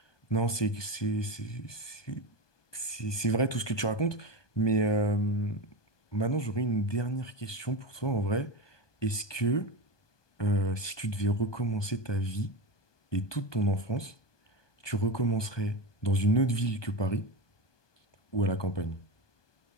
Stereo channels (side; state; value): right; late; 1.2 ms